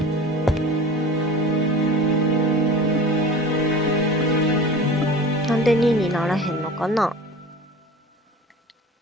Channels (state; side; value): normal; both; correlation 0.37